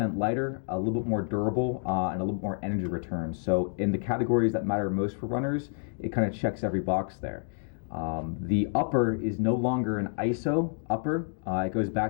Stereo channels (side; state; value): right; silent; digital silence